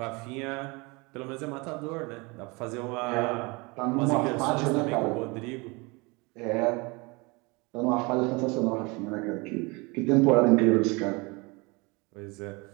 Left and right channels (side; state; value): left; quieter; 26.9 dB